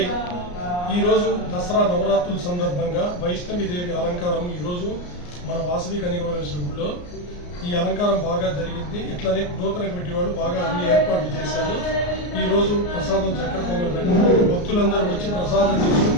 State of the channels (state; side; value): late; right; 34 ms